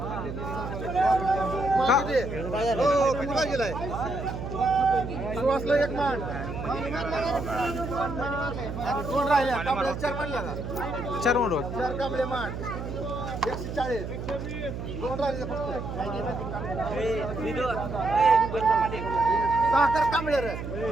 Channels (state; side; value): noise; right; hum, 7 dB below the sound